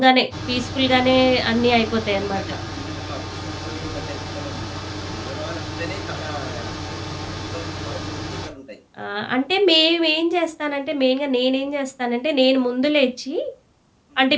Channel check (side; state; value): both; identical; correlation 1.00